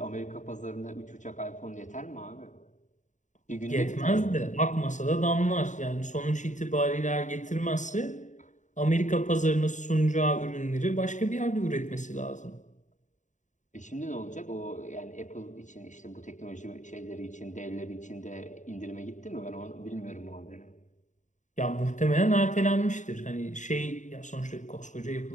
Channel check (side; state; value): right; late; 0.36 ms